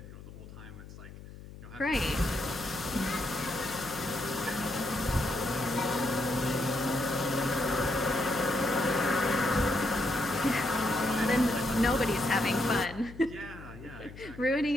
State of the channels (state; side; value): noise; left; hum, 15 dB below the sound